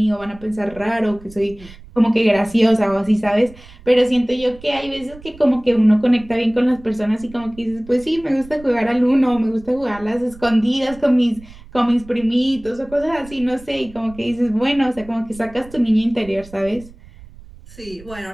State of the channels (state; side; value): noise; right; rumble, 20 dB below the sound